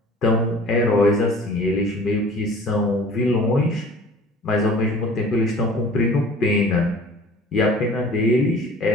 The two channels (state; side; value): normal; both; correlation 0.46